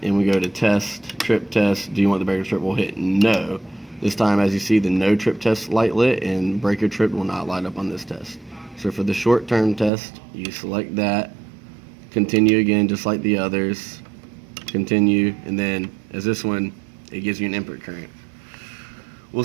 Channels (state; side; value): drops out; left; at 9.9 s